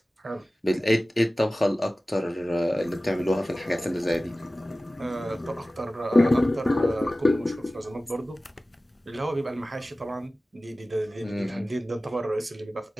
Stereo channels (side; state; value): both; normal; correlation 0.97